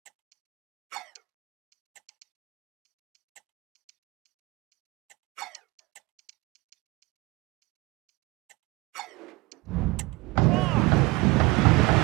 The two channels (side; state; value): left; quieter; 22.8 dB